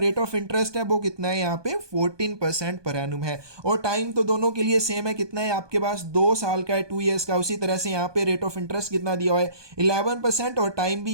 ऑफ इंटरेस्ट है वो कितना है, यहाँ पे 14% पर एनुम है और टाइम तो दोनों के लिए सेम है, कितना है आपके पास, 2 साल का है, 2 ईयर्स का। उसी तरह से यहाँ पे रेट ऑफ इंटरेस्ट कितना दिया हुआ है, 11% और टाइम भी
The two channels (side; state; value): left; late; 1.2 ms